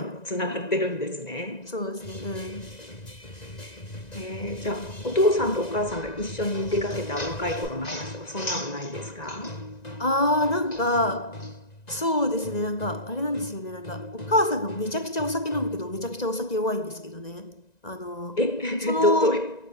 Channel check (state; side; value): late; right; 1.9 ms